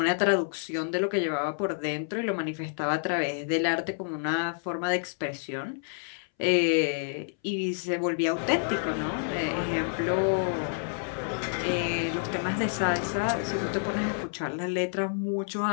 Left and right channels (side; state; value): right; silent; 59 dB below the other